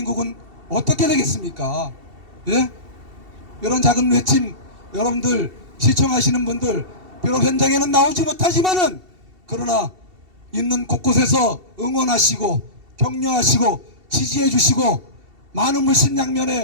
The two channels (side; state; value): left; late; 2.7 ms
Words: 어떻게 되겠습니까? 예? 이런 작은 외침, 여러분들 시청하시는 분들 비록 현장에는 나오지 못하지만은 그러나 있는 곳곳에서 응원하시고 격려하시고 지지해 주시고 많은